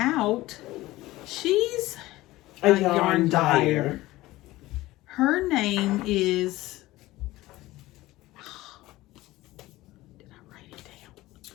she's a yarn dyer. Her name is... Did I write it down?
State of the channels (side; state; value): right; quieter; 17.8 dB